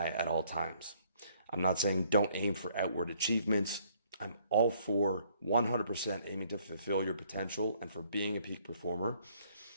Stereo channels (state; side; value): inverted; both; correlation -0.65